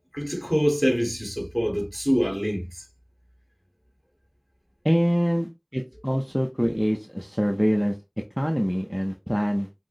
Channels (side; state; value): both; identical; correlation 1.00